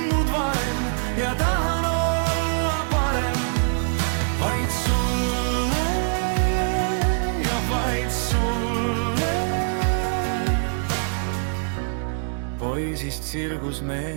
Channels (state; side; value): silent; left; digital silence